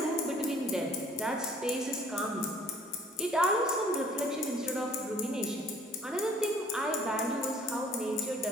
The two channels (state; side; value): normal; both; correlation 0.56